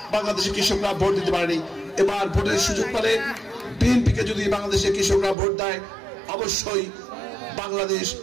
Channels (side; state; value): left; drops out; at 5.4 s